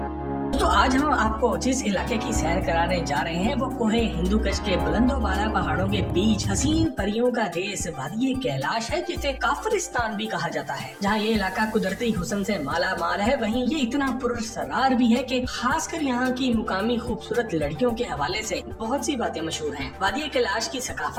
तो आज हम आपको जिस इलाके की सैर कराने जा रहे हैं वो कोहे हिंदू कश के बुलंदोबाला पहाड़ों के बीच हसीन परियों का देश वादी कैलाश है, जिसे काफरिस्तान भी कहा जाता है। जहाँ ये इलाका कुदरती हुस्न से माला माल है, वहीं ये इतना पुरसरार भी है कि खासकर यहाँ की मुकामी खूबसूरत लड़कियों के हवाले से बहुत सी बातें मशहूर हैं। वादी कैलाश की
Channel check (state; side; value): identical; both; correlation 1.00